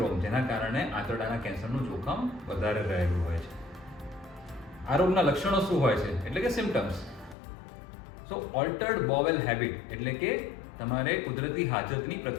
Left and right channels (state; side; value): drops out; right; at 7.4 s